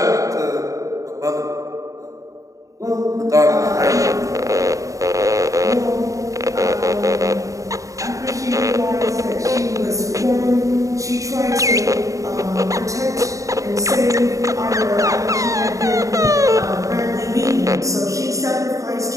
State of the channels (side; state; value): left; late; 0.16 ms